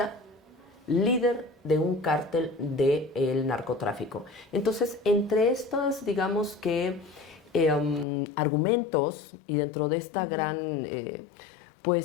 líder de un cártel del narcotráfico. Entonces, entre estos, digamos que, argumentos, y dentro de esta gran,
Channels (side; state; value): right; drops out; at 8.1 s